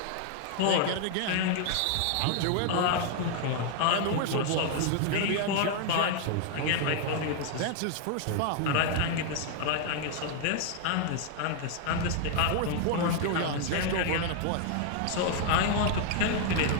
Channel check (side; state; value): both; different; correlation 0.00